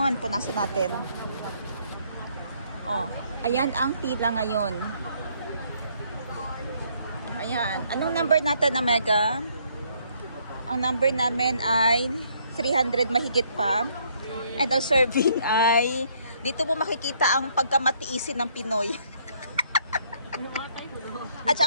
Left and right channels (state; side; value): inverted; both; correlation -0.67